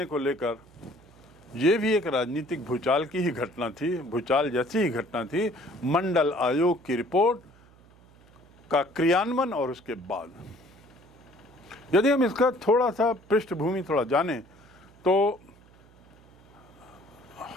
को लेकर, ये भी एक राजनीतिक भूचाल की ही घटना थी, भूचाल जैसी ही घटना थी। मंडल आयोग की रिपोर्ट का क्रियान्वयन और उसके बाद यदि हम इसका थोड़ा सा पृष्ठभूमि थोड़ा जानें तो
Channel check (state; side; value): noise; right; hum, 26 dB below the sound